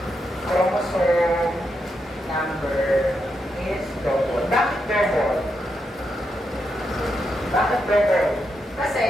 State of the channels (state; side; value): normal; both; correlation 0.83